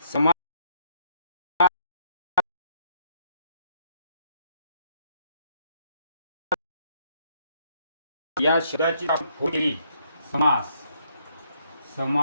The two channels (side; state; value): both; inverted; correlation -0.69